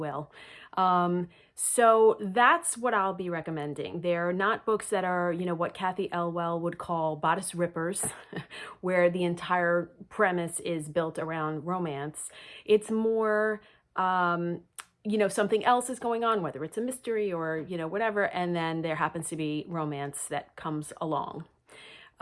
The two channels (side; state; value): both; identical; correlation 1.00